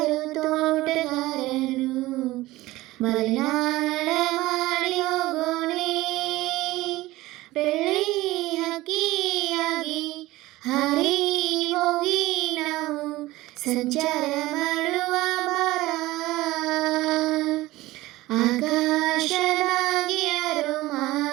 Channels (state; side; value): quieter; left; 18.1 dB